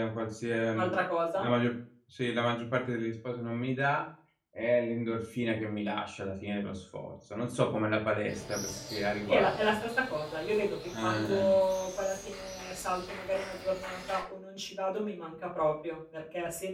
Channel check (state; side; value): identical; both; correlation 1.00